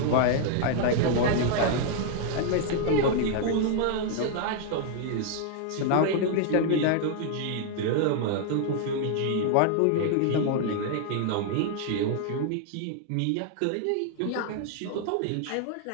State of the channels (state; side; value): different; both; correlation 0.00